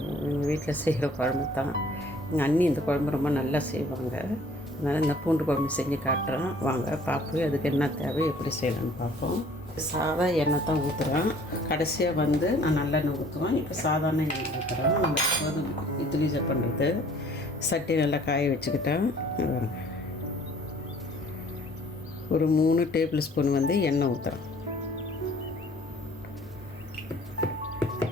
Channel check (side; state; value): both; normal; correlation 0.55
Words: வீட்டில் செய்கிற குழம்பு தான். எங்கள் அண்ணி இந்த குழம்பு ரொம்ப நல்லா செய்வாங்க. அதனால் இந்த பூண்டு குழம்பு செஞ்சு காட்டுறேன். வாங்க பார்ப்போம் அதுக்கு என்ன தேவை, எப்படி செய்யலான்னு பார்ப்போம். சாதா எண்ணெய் தான் ஊற்றுறேன். கடைசியாக நான் நல்லெண்ணெய் ஊற்றுவேன். இப்போ சாதாரண எண்ணெய் ஊற்றுறேன். நம்ம இட்லி பண்ணுறது சட்டி நல்லா காய வச்சுக்கிட்டேன். ஒரு 3 டேபிள் ஸ்பூன் எண்ணெய் ஊற்றுறேன்.